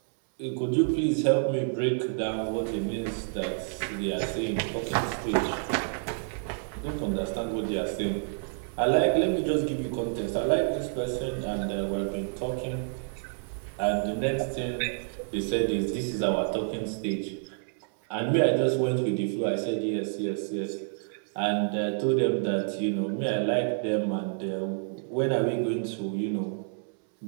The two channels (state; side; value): silent; left; 59 dB below the other